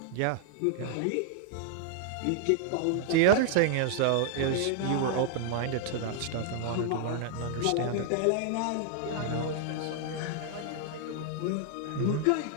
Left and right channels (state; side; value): different; both; correlation 0.00